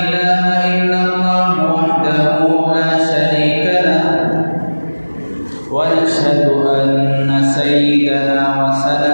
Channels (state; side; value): inverted; both; correlation -1.00